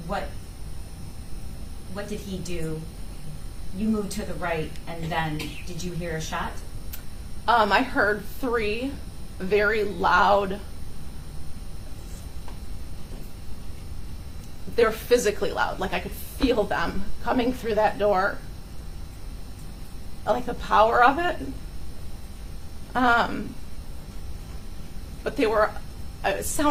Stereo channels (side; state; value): both; identical; correlation 1.00